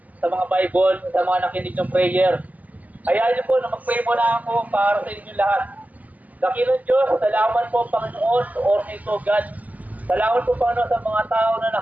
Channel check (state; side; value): late; left; 0.078 ms